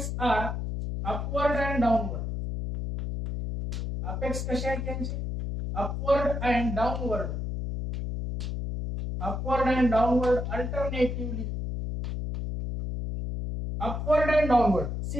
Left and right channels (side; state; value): left; noise; hum, 3 dB below the sound